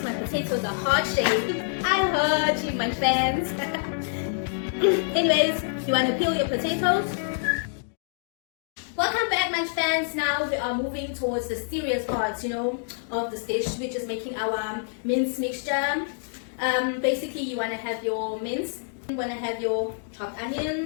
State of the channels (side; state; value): right; silent; digital silence